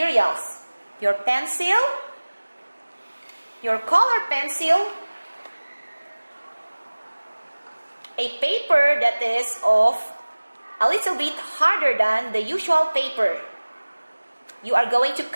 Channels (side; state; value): both; inverted; correlation -1.00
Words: Your pencil, your color pencil, a paper that is of a little bit harder than the usual paper. You are going to